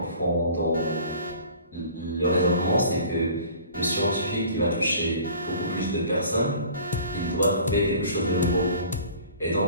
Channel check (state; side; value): inverted; both; correlation -0.47